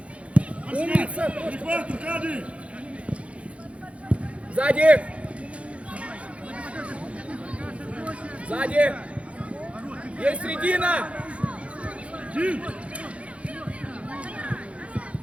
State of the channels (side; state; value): left; late; 0.062 ms